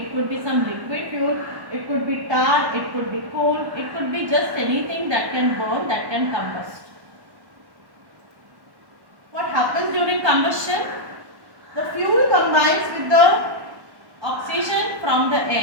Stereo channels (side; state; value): left; late; 1.1 ms